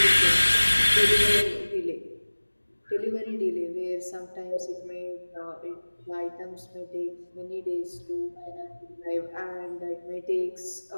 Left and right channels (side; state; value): both; inverted; correlation -1.00